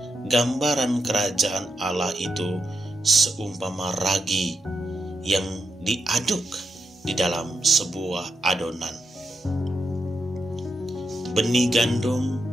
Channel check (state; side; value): normal; both; correlation 0.84